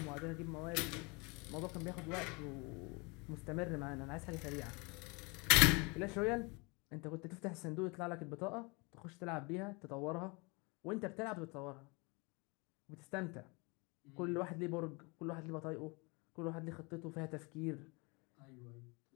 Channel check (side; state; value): right; quieter; 29.0 dB